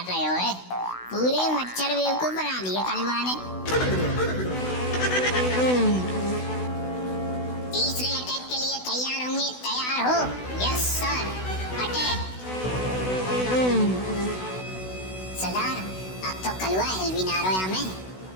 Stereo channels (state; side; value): late; right; 16 ms